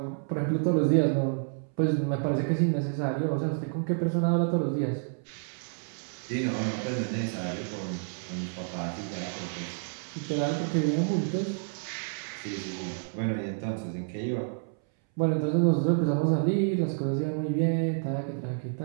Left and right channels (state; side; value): silent; left; 58 dB below the other